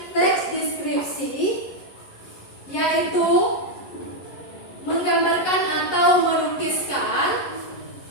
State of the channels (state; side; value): late; right; 11 ms